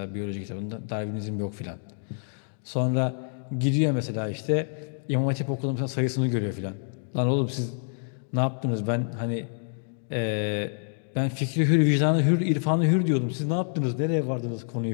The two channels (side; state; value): right; silent; digital silence